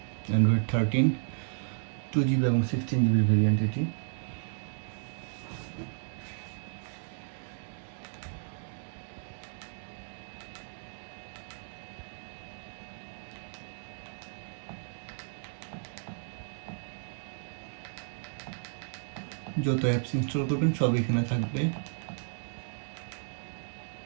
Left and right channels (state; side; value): silent; left; 56 dB below the other